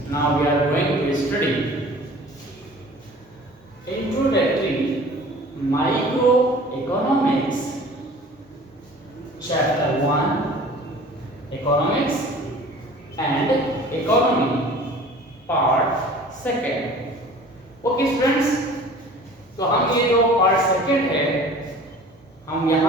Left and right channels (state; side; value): normal; both; correlation 0.45